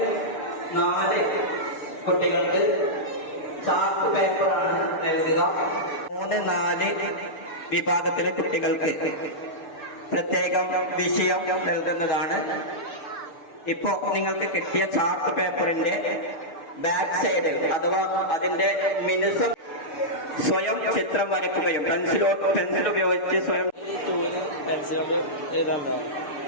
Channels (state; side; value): late; right; 6.7 ms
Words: 4 കുട്ടികൾക്ക് ചാർട്ട് പേപ്പറാണ് നൽകുക. 3, 4 വിഭാഗത്തിലെ കുട്ടികൾക്ക് പ്രത്യേകം വിഷയം നൽകുന്നതാണ്. ഇപ്പോ നിങ്ങൾക്ക് കിട്ടിയ ചാർട്ട് പേപ്പറിന്റെ ബാക്ക് സൈഡിൽ അഥവാ അതിന്റെ മിനുസം സ്വയം ചിത്രം വരയ്ക്കുകയും പെൻസിൽ ഉപയോഗിച്ച് സ്വയം